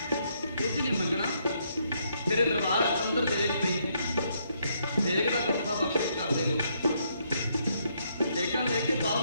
कुछ नहीं मंगना तेरे दरबार अंदर देग पई है। देग का कथा बख्शिश कर दे लो। देगा लेके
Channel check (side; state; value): both; inverted; correlation -0.73